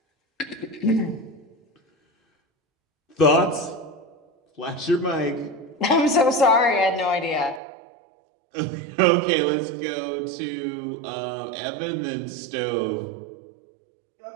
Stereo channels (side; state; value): left; drops out; at 7.6 s